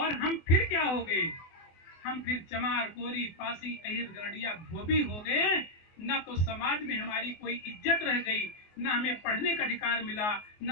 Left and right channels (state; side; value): late; right; 24 ms